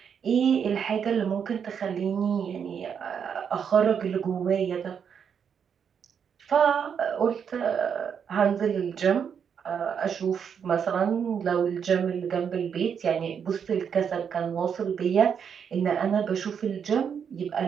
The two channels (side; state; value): left; quieter; 7.3 dB